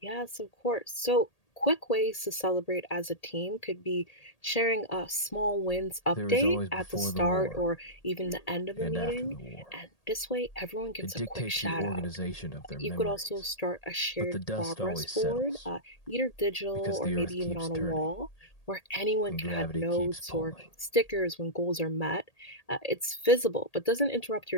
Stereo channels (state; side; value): late; right; 1.8 ms